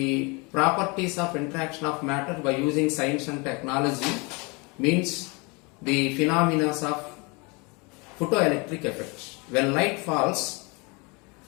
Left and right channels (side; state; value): right; quieter; 29.0 dB